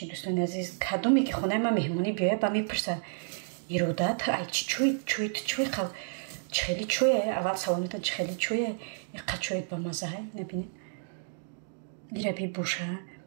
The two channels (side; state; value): left; silent; digital silence